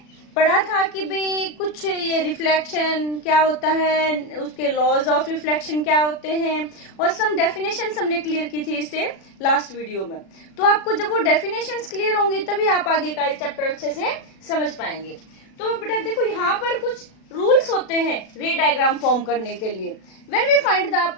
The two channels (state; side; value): late; right; 36 ms